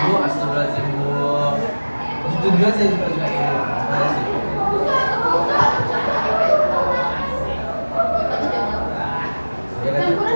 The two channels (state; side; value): inverted; both; correlation -1.00